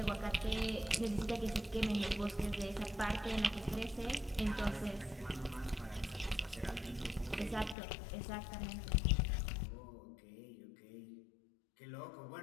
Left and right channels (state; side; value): drops out; right; at 7.8 s